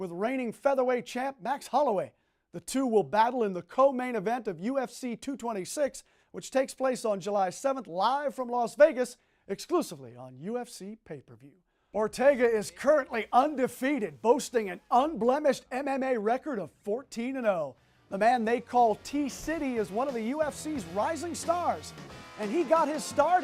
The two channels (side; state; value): both; identical; correlation 1.00